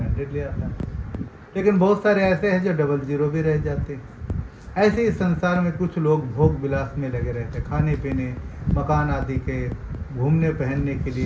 100 ले आता है, लेकिन बहुत सारे ऐसे हैं जो 00 भी रह जाते हैं। ऐसे ही संसार में कुछ लोग भोग विलास में लगे रहते हैं, खाने पीने, मकान आदि के, घूमने पहनने के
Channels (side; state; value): both; identical; correlation 1.00